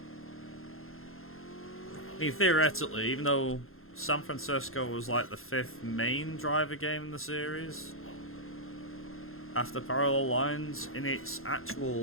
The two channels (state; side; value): late; right; 0.61 ms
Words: I mean, theoretically, even though San Francisco was like the 5th main driver game in the series, after Parallel Lines, in its